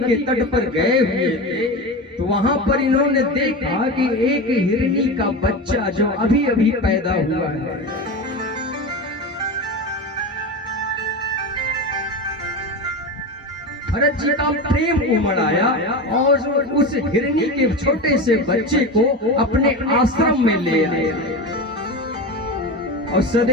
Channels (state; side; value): normal; both; correlation 0.24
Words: तट पर गए हुए थे, तो वहां पर इन्होंने देखा कि एक हिरनी का बच्चा जो अभी अभी पैदा हुआ है, भरत जी का प्रेम उमड़ आया और उस हिरनी के छोटे से बच्चे को अपने आश्रम में ले आए और